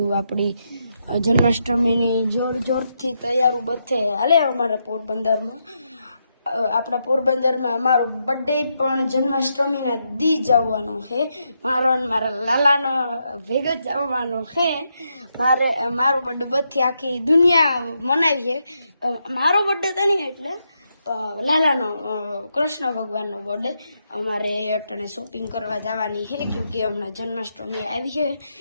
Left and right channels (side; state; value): both; inverted; correlation -0.82